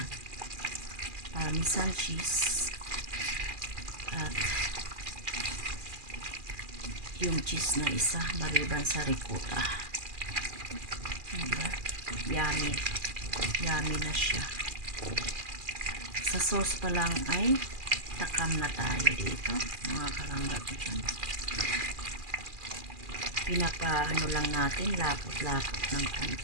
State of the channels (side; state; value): left; late; 2.4 ms